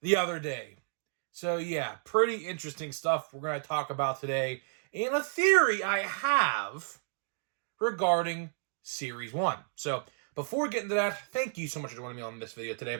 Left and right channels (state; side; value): silent; left; digital silence